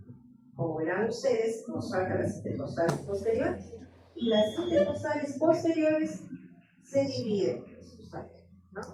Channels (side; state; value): both; identical; correlation 1.00